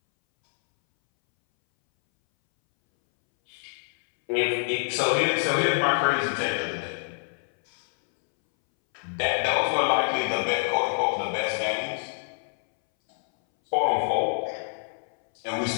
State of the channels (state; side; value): silent; right; 61 dB below the other